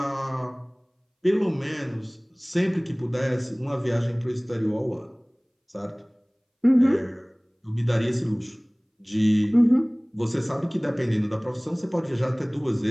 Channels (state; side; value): identical; both; correlation 1.00